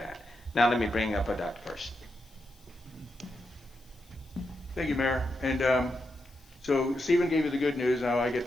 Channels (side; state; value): left; noise; hiss, 29 dB below the sound